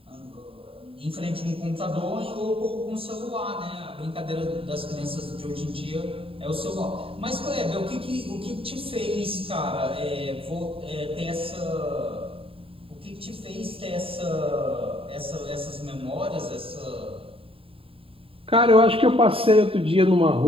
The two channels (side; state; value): left; late; 0.27 ms